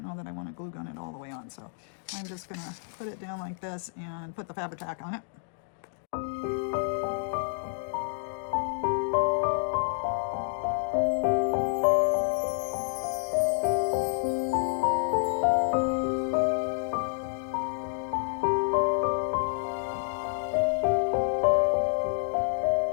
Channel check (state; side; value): silent; right; digital silence